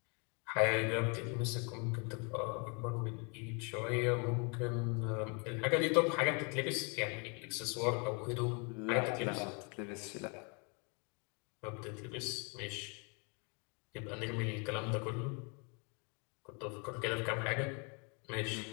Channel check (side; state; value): right; quieter; 34.4 dB